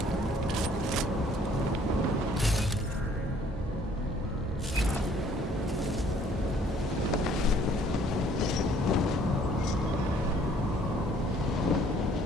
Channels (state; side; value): normal; both; correlation 0.60